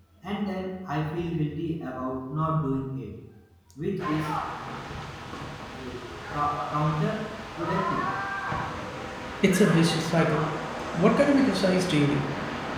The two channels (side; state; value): both; identical; correlation 1.00